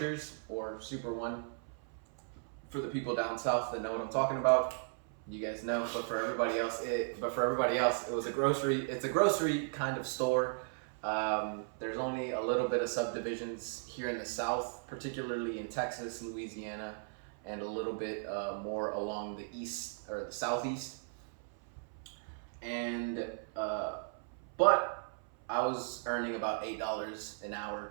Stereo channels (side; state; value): left; silent; 53 dB below the other